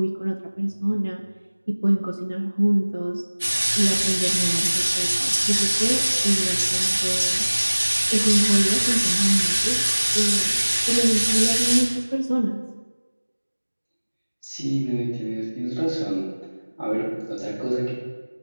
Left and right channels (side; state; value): both; inverted; correlation -1.00